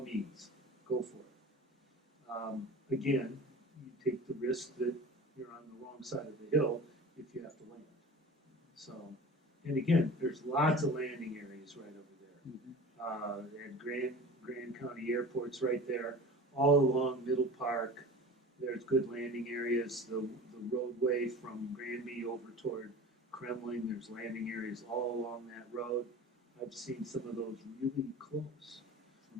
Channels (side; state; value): both; normal; correlation 0.37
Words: means, go for it. Again, you take the risk that you're on the wrong side of the hill if you have to land. So, and again, there's lots of landing areas right over there. And Grand County Airport's right there, all along Middle Park. There's good landing areas. The roadway from Granby over toward Kremling, there's landing areas all along that road. I've seen some of those really close.